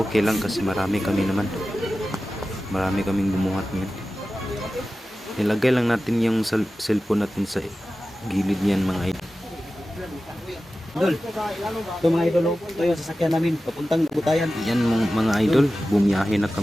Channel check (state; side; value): normal; both; correlation 0.95